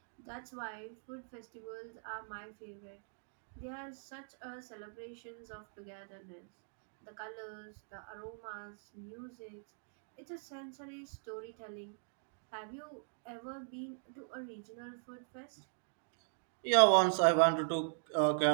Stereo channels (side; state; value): left; silent; digital silence